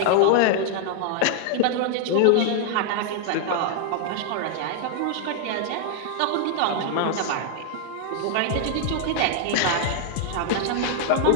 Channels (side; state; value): both; different; correlation -0.01